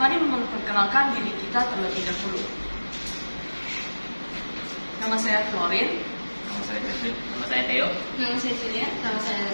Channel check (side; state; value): both; inverted; correlation -1.00